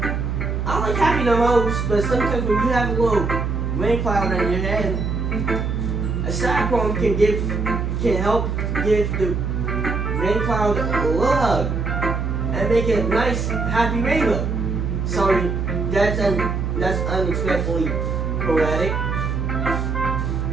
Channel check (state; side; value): noise; right; hum, 1 dB below the sound